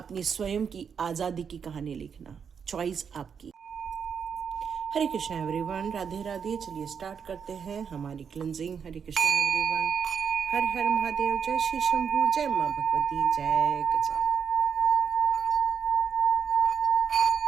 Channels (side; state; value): left; quieter; 6.8 dB